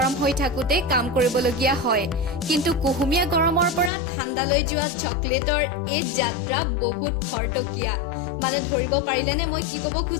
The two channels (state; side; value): drops out; right; at 3.9 s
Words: হৈ থাকোঁতে কাম কৰিবলগীয়া হয়, কিন্তু কুহুমীয়া গৰমৰ পৰা ঠাণ্ডালৈ যোৱা চকলেটৰ এই যাত্ৰা বহুত খৰতকীয়া। মানে ধৰিব পাৰিলেনে মই কি ক'ব